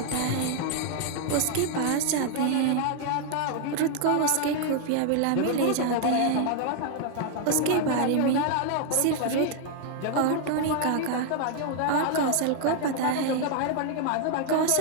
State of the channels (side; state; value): both; different; correlation 0.00